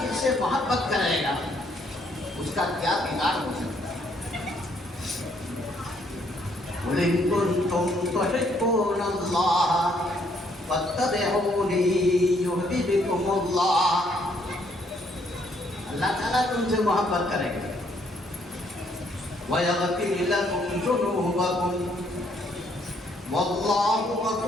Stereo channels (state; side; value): normal; both; correlation 0.69